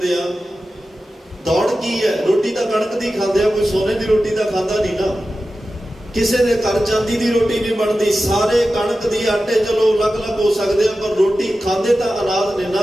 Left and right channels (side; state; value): both; normal; correlation 0.93